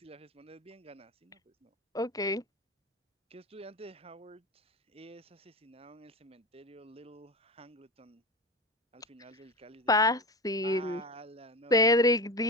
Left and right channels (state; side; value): normal; both; correlation 0.27